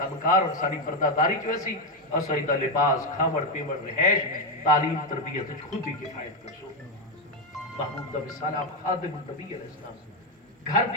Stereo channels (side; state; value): both; normal; correlation 0.07